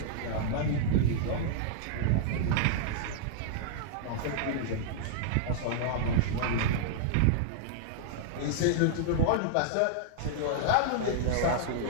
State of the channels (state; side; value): different; both; correlation -0.01